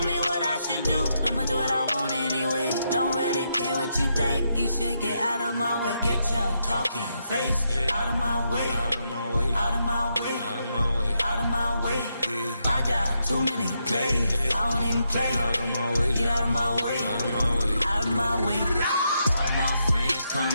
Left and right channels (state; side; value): inverted; both; correlation -0.81